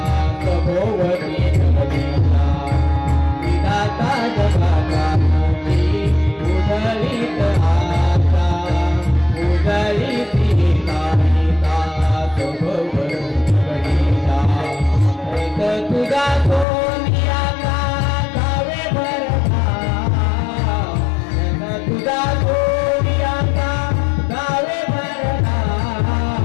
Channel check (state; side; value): drops out; right; at 16.7 s